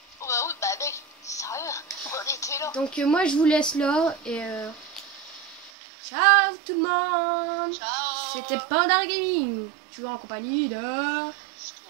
Oh bah oui, bah mec, sérieux, on était là. Donc, moi je vous laisse là, et... Ciao tout le monde. Ciao. C'était Panda Gaming. Toujours en compagnie de...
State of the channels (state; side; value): drops out; left; at 5.7 s